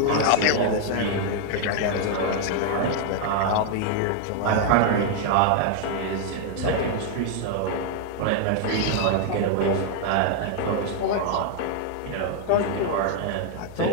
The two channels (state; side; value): different; both; correlation 0.00